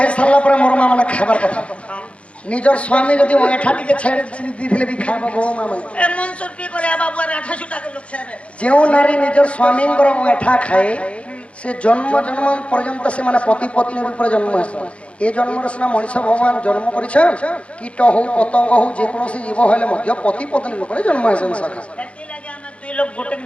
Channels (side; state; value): right; late; 0.061 ms